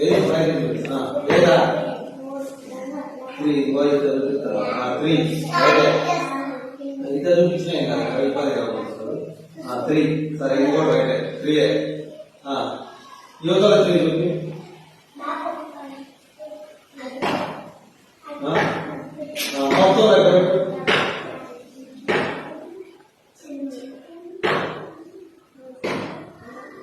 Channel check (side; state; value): both; identical; correlation 1.00